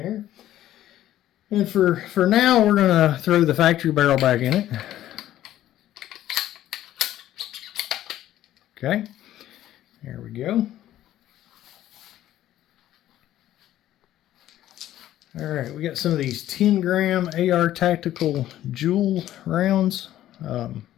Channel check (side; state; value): right; quieter; 13.0 dB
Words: And for now, we're going to throw the factory barrel back in it. Okay, there we go. All right, we got some of these 10-gram AR Tactical Joules rounds.